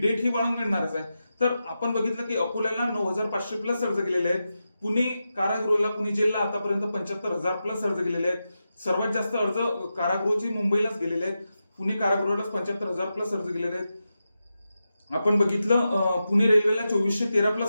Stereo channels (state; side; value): inverted; both; correlation -0.90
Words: ही वाढून मिळणारच आहे. तर आपण बघितलं की अकोल्याला 9,500 प्लस अर्ज गेलेले आहेत. पुणे कारागृहाला, पुणे जेलला आतापर्यंत 75,000 प्लस अर्ज गेलेले आहेत. सर्वात जास्त अर्ज कारागृहाचे मुंबईलाच गेलेले आहेत. पुणे कारागृहालाच 75,000 प्लस अर्ज गेलेले आहेत. आपण बघितलं पुणे रेल्वेला 2413